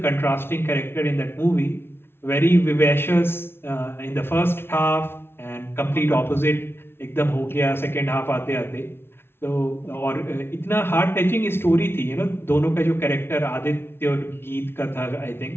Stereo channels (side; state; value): right; late; 0.11 ms